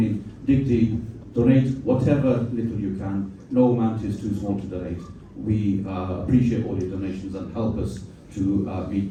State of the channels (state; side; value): identical; both; correlation 1.00